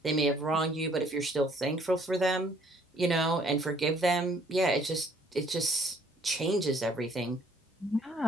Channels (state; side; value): normal; both; correlation 0.62